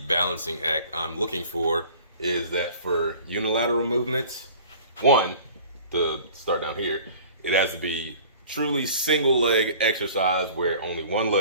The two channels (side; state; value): both; inverted; correlation -0.46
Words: balancing act I'm looking for is that for unilateral movements, one, to start down here, it has to be truly single leg exercise where only one